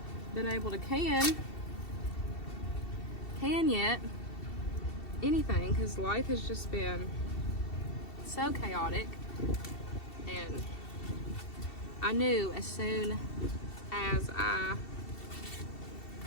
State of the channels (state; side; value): late; right; 2.7 ms